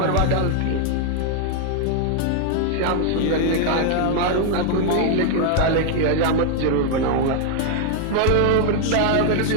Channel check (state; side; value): different; both; correlation 0.00